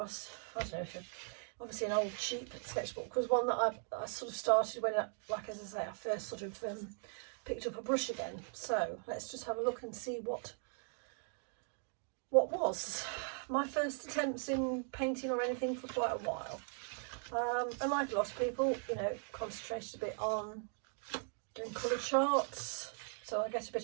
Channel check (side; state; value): left; silent; 52 dB below the other